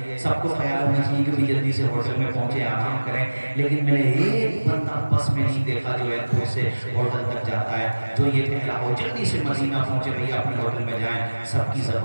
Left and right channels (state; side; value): inverted; both; correlation -1.00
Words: سب کو خیال ہونا چاہیے کہ بھی جلدی سے ہوٹل میں پہنچے، آرام کریں، لیکن میں نے ایک بندہ بس میں نہیں دیکھا جو ایئرپورٹ سے ہوٹل تک جاتا ہے جو یہ کہہ رہا ہو جلدی سے مدینہ پہنچے بھئی اپنے ہوٹل میں جائیں۔ سب کی